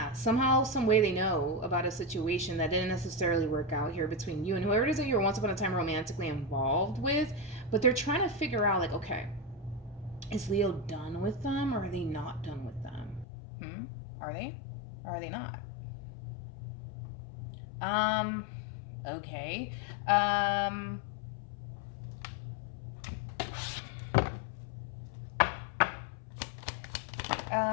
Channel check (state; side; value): drops out; right; at 13.2 s